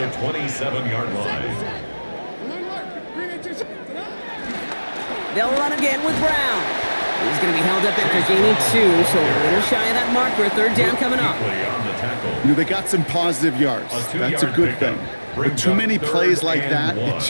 27-yard line. They'll run again with Brown. He's going to be held up after gaining 2, so a little shy of that marker. 3rd down coming up. You know, they got some positive yards. That's a good thing. But too many plays like that, it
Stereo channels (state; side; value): inverted; both; correlation -1.00